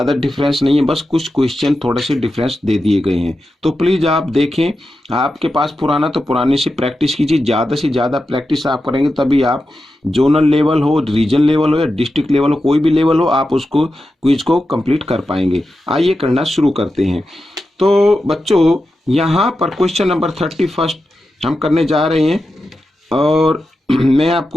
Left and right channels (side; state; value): both; normal; correlation 0.90